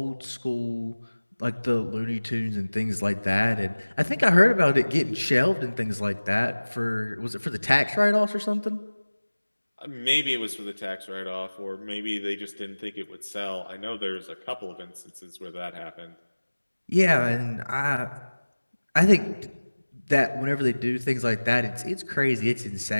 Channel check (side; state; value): both; inverted; correlation -1.00